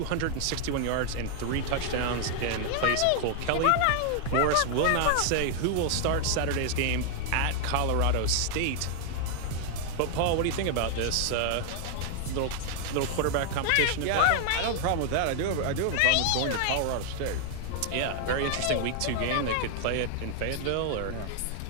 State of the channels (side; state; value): both; different; correlation 0.00